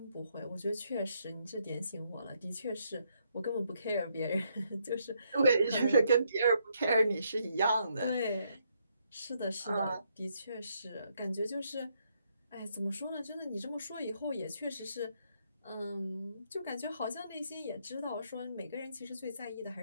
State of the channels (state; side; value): inverted; both; correlation -0.75